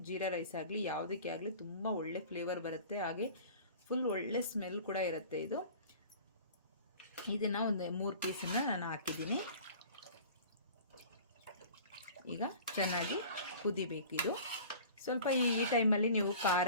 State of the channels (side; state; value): both; inverted; correlation -0.43